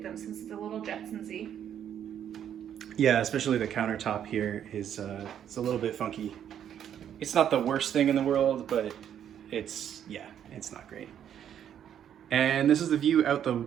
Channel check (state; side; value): quieter; left; 9.6 dB